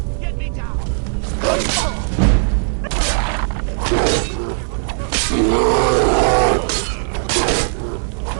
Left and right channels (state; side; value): silent; left; 60 dB below the other